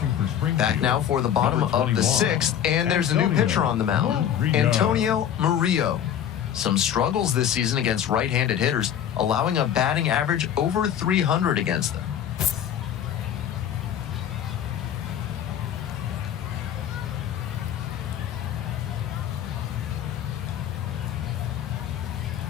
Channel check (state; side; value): quieter; right; 9.7 dB